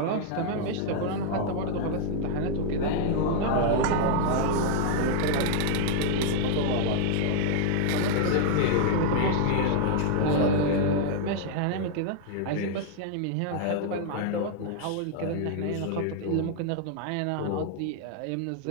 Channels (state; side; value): different; both; correlation 0.00